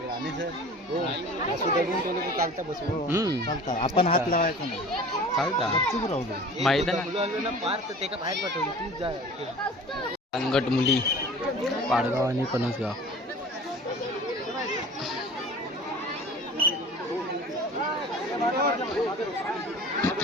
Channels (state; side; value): normal; both; correlation 0.42